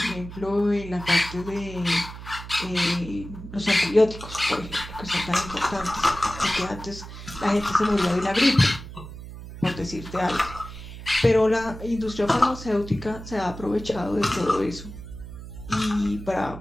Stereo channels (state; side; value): noise; right; hum, 12 dB below the sound